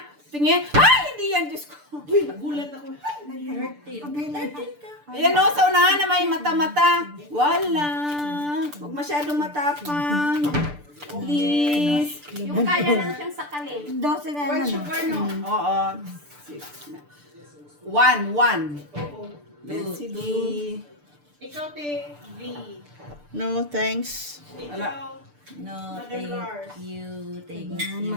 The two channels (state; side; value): late; left; 6.8 ms